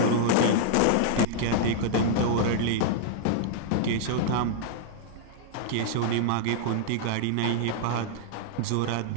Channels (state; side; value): different; both; correlation -0.01